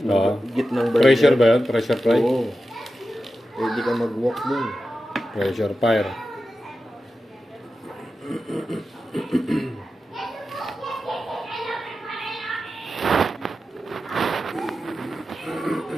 burger. Pressure ba yun? Pressure fry? Oo. Pwede kang mag-walk dun. Pressure fire.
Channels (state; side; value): normal; both; correlation 0.91